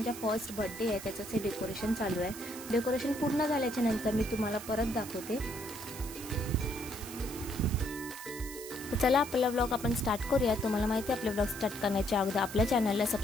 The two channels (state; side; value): noise; right; hiss, 12 dB below the sound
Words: फर्स्ट बर्थडे आहे, त्याचंच हे डेकोरेशन चालू आहे. डेकोरेशन पूर्ण झाल्याच्या नंतर मी तुम्हाला परत दाखवते. तर चला आपला व्लॉग आपण स्टार्ट करूया. तुम्हाला माहिती आहे आपले व्लॉग स्टार्ट करण्याच्या अगोदर आपल्या चॅनलला